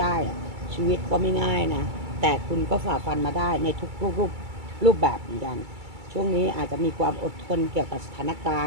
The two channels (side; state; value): left; late; 2.3 ms